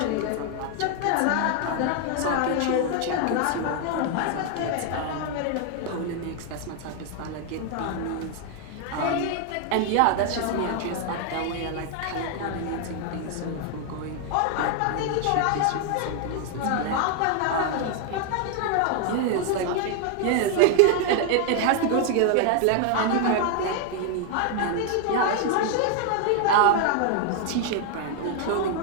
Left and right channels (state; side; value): different; both; correlation 0.00